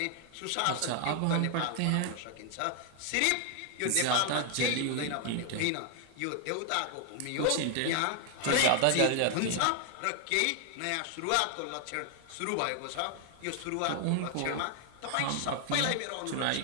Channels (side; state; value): both; different; correlation 0.00